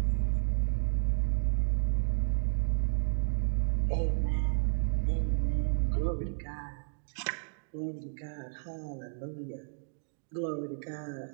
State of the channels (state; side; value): silent; left; digital silence